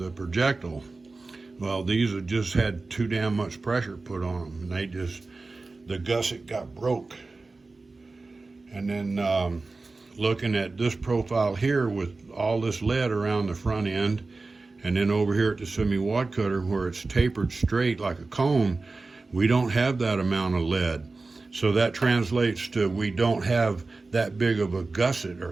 projectile. Well, these have just had too damn much pressure put on them, and the gusset got broke. And then looking at this profile here with all this lead around the front end, and then over here at the semi-wad cutter where it's tapered straight like a cone, we don't have that amount of lead. So that translates to we don't have that big of a gusset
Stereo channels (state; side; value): quieter; left; 3.6 dB